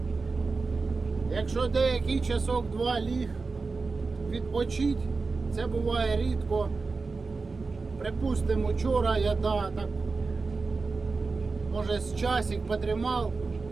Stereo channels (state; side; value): quieter; left; 4.1 dB